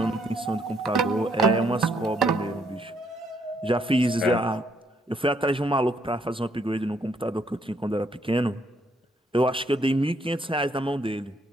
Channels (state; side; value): normal; both; correlation 0.71